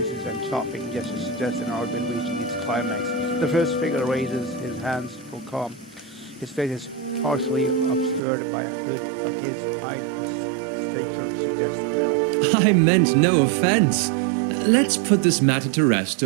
and chopping gestures suggest an argument reaching its climax. The first figure raises his hands for calm. His face is partially obscured by a hood, but his height and stature suggest an elf. I meant no offense. Let's put this matter to rest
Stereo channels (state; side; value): drops out; left; at 8.2 s